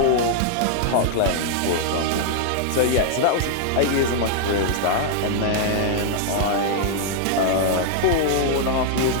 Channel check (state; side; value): different; both; correlation -0.01